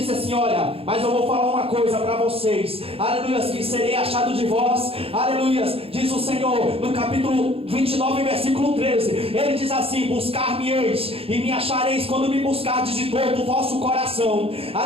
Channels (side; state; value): left; late; 0.28 ms